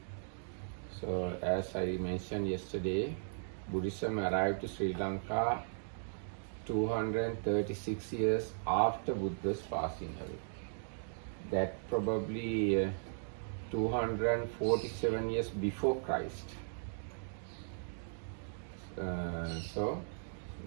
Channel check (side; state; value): left; silent; digital silence